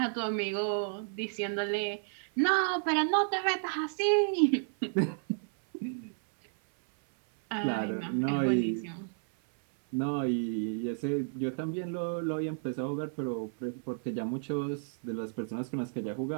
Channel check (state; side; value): silent; left; 56 dB below the other